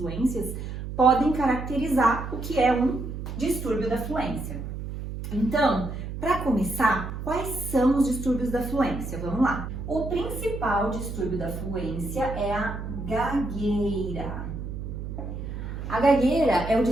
podem caracterizar o que é um distúrbio da fluência. Então, para começar, quais são os distúrbios da fluência? Vamos lá. O principal distúrbio da fluência é a gagueira. A gagueira é o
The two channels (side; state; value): right; noise; hum, 7 dB below the sound